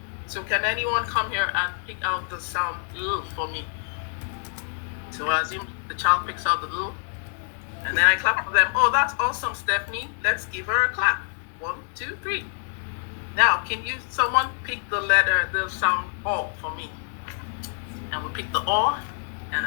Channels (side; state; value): right; silent; digital silence